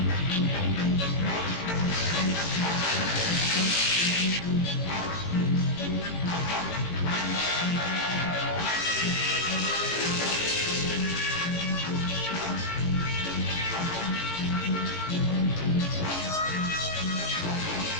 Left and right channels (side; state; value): right; late; 18 ms